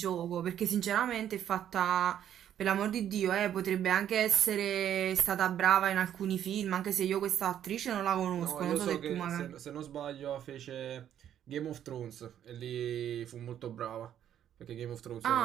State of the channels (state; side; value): quieter; left; 10.3 dB